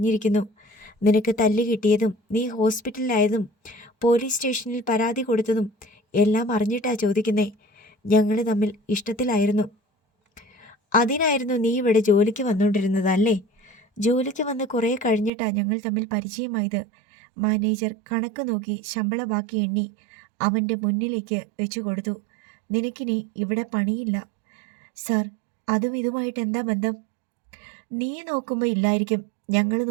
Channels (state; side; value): drops out; left; at 15.3 s